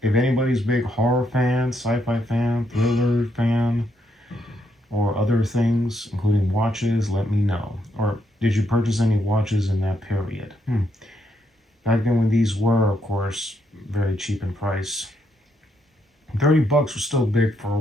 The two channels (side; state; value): both; normal; correlation 0.77